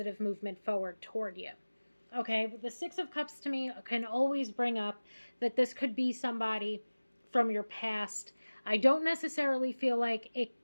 movement forward toward you. Okay, but the 6 of Cups to me can always bring up that this could be somebody from your past. I don't necessarily feel like it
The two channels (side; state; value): both; inverted; correlation -1.00